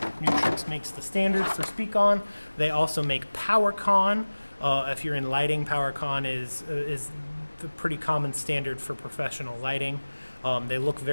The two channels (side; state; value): both; inverted; correlation -1.00